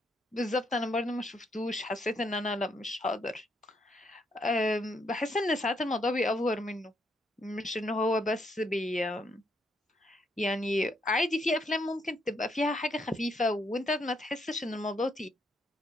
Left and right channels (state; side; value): normal; both; correlation 0.75